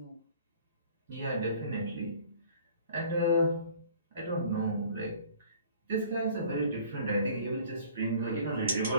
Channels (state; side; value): inverted; both; correlation -0.51